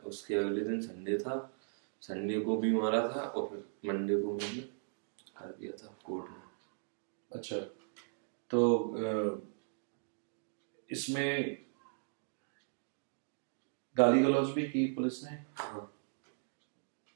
अगले दिन संडे था, संडे को भी मारा था, और फिर मंडे को मैंने कर दिया था कोर्ट में। अच्छा, तो इसमें गाली गलौज भी की पुलिस ने? हाँ,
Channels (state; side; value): silent; left; digital silence